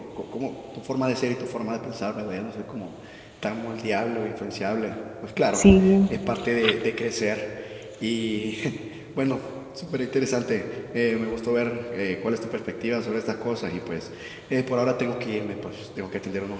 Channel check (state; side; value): identical; both; correlation 1.00